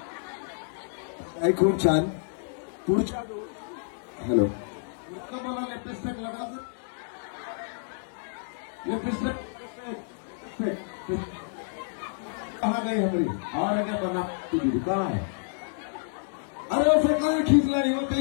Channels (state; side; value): silent; right; digital silence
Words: आई खूप छान. पुढच्या हॅलो मला लिपस्टिक लगायचं. लिपस्टिक कहा गई हमारी और क्या बना तुझी कहा है. अरे उसे कहीं खींच लाई